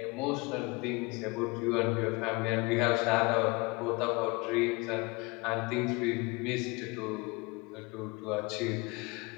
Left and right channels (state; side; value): quieter; right; 26.4 dB